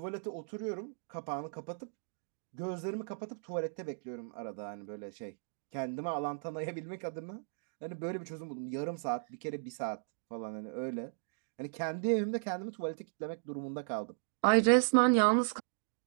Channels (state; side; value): silent; left; digital silence